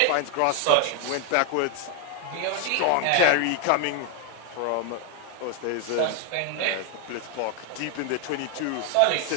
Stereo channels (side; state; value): both; different; correlation 0.00